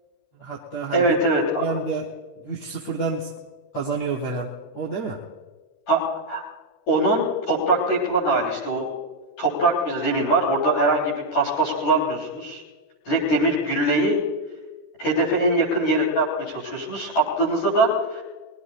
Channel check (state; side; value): late; right; 11 ms